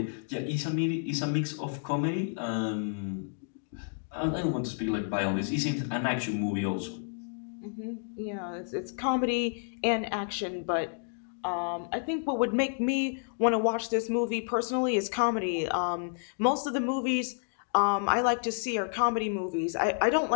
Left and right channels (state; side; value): silent; right; digital silence